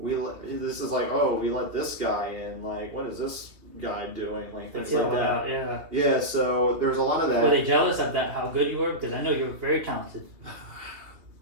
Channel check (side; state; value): left; late; 3.0 ms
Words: let this guy in. What is this guy doing? Things like that. Yeah. Yeah. So there's a lot of that. Were they jealous of that? How good you were? Because I know you were very talented.